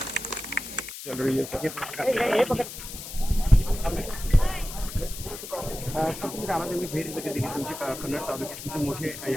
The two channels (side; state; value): left; noise; hiss, 10 dB below the sound